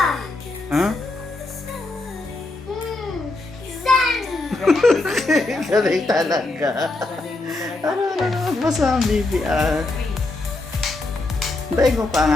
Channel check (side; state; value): right; quieter; 3.1 dB